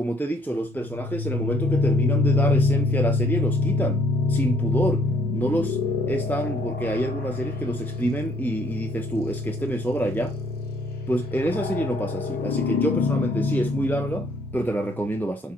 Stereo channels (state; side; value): normal; both; correlation 0.65